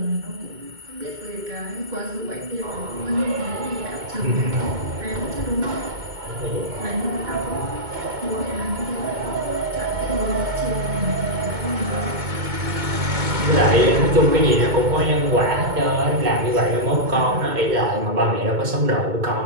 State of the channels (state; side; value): late; left; 2.2 ms